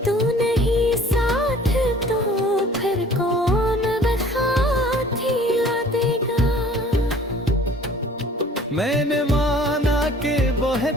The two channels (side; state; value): both; normal; correlation 0.51